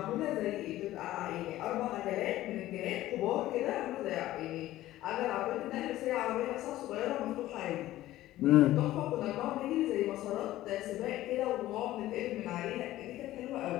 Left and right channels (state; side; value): quieter; right; 15.2 dB